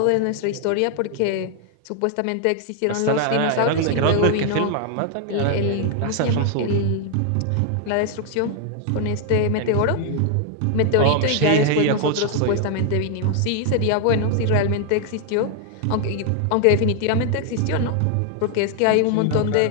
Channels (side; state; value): both; different; correlation 0.00